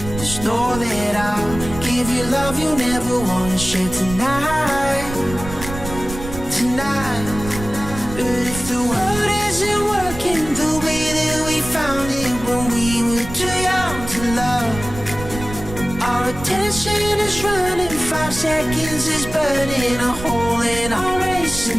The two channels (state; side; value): noise; right; rumble, 10 dB below the sound